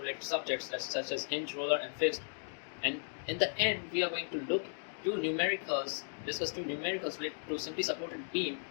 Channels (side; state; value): right; silent; digital silence